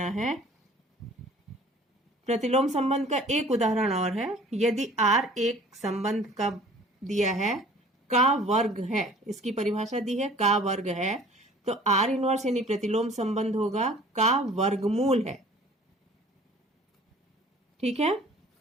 है। प्रतिलोम संबंध का एक उदाहरण और है। यदि R एक संबंध का दिया है का वर्ग है, इसकी परिभाषा दी है का वर्ग है, तो R इनवर्स यानी प्रतिलोम संबंध होगा का वर्गमूल है। ठीक है,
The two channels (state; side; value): normal; both; correlation 0.49